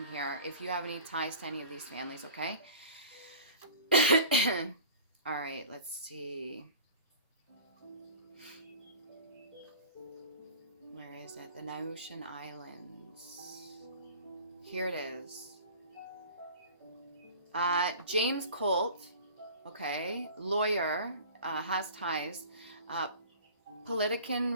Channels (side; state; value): both; inverted; correlation -0.41